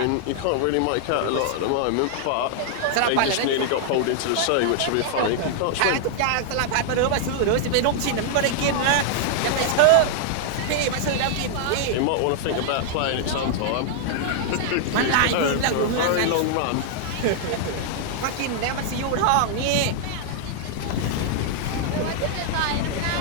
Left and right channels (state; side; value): different; both; correlation -0.01